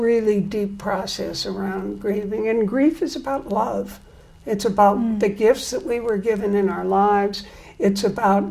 deep process around grieving. And grief is about love. It's about the gifts that we were given in our lives. It's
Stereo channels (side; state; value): both; identical; correlation 1.00